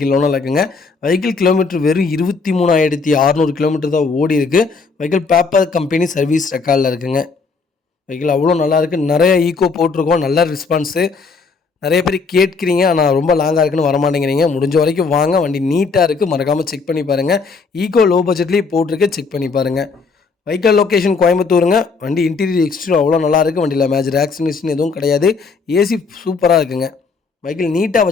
owner இருக்குங்க. வெஹிக்கிள் கிலோமீட்டர் வெறும் 23,600 கிலோமீட்டர் தான் ஓடி இருக்குது. வெஹிக்கிள் பேப்பர் கம்பெனி சர்வீஸ் ரெக்கார்டில் இருக்குங்க. வெஹிக்கிள் அவ்வளோ நல்லாயிருக்கு. நிறைய ஈக்கோ போட்டிருக்கோம். நல்ல ரெஸ்பான்ஸு. நிறைய பேர் கேட்குறீங்க, ஆனால் ரொம்ப லாங்காக இருக்குன்னு வரமாட்டேங்கிறீங்க. முடிஞ்ச வரைக்கும் வாங்க. வண்டி நீட்டாக இருக்குது. மறக்காமல் செக் பண்ணி பாருங்கள். ஈக்கோ லோ பட்ஜெட்லேயே போட்டிருக்கு. செக் பண்ணி பாருங்கள். வெஹிக்கிள் லொக்கேஷன் கோயம்புத்தூருங்க. வண்டி இன்டீரியர் எக்ஸ்டீரியர் அவ்வளோ நல்லாயிருக்கு. வண்டியில் மேஜர் ஆக்சிடென்ட் எதுவும் கிடையாது. ஏசி சூப்பராக இருக்குங்க. வெஹிக்கிள் நீட்டாக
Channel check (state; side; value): quieter; right; 4.6 dB